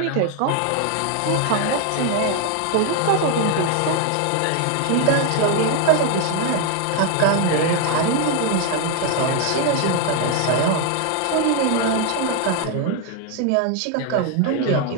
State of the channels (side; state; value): both; different; correlation 0.00